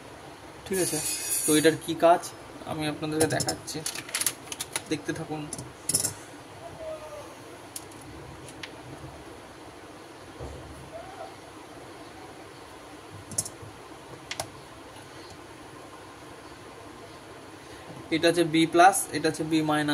ঠিক আছে, তো এটার কি কাজ আমি আপনাদেরকে দেখাচ্ছি, দেখতে থাকুন। এটা হচ্ছে বি প্লাস, এটা হচ্ছে বি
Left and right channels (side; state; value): both; identical; correlation 1.00